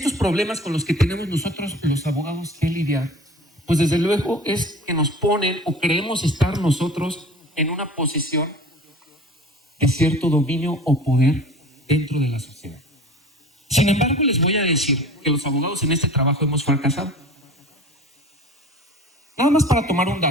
problemas con los que tenemos nosotros, los abogados, que lidiar, pues desde luego es que nos ponen o creemos estar nosotros en una posición de cierto dominio o poder dentro de la sociedad. Sin embargo, les voy a decir que los abogados en este trabajo hemos fracasado. Nada más para tomar un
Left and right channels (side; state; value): both; normal; correlation 0.40